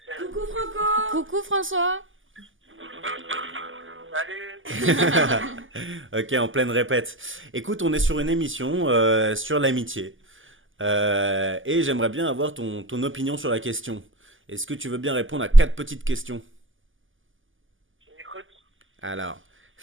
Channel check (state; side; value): late; left; 0.58 ms